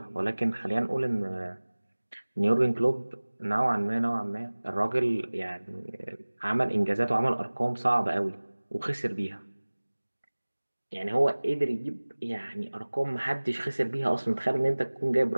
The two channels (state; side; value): inverted; both; correlation -1.00